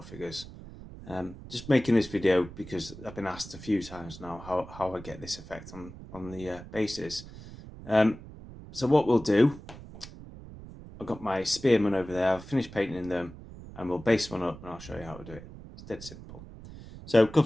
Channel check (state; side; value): noise; right; rumble, 15 dB below the sound